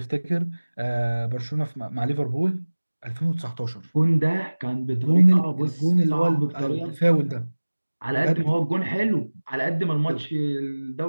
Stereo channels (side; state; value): both; inverted; correlation -1.00